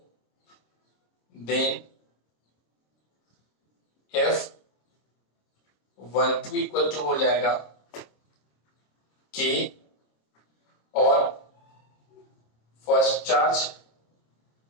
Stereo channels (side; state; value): right; late; 26 ms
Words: देन F12 इक्वल टू हो जाएगा K और first charge